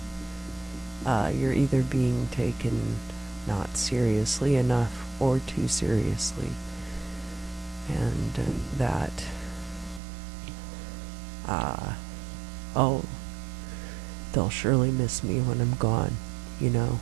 you're either being taken not seriously enough or too seriously. And that, oh, they'll surely miss me when I'm gone, you know?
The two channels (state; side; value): drops out; left; at 10.0 s